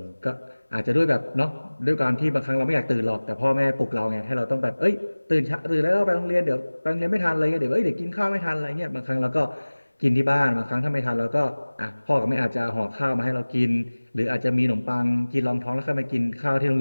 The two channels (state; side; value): inverted; both; correlation -1.00